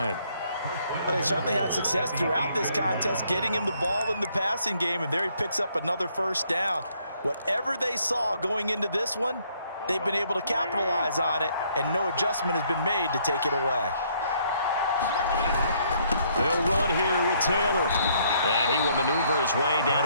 Well, they certainly had success throughout this contest, getting him the ball in the passing game, and there he picks up another 1st down. Whatever they saw going into this one, they've been able to capitalize on it, and no adjustment has been made to take it away. They'll run here with Taylor. And he will maneuver his way down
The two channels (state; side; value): inverted; both; correlation -0.67